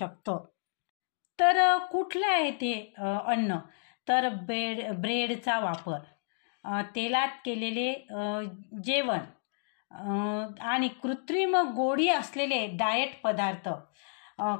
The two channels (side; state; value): right; silent; digital silence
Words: तर कुठलं आहे ते अन्न, तर ब्रेडचा वापर, तेलात केलेले जेवण आणि कृत्रिम गोडी असलेले डाएट पदार्थ.